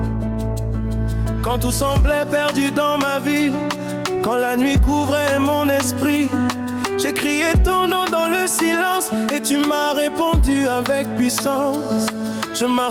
Quand tout semblait perdu dans ma vie, quand la nuit couvrait mon esprit, j'ai crié ton nom dans le silence et tu m'as répondu avec puissance. Je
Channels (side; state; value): both; identical; correlation 1.00